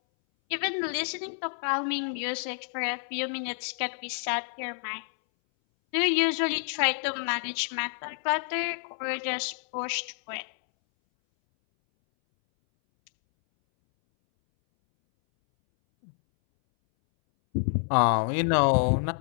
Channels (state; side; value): silent; right; 59 dB below the other